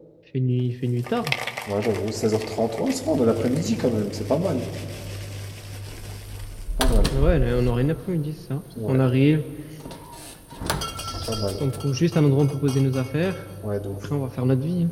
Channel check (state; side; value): identical; both; correlation 1.00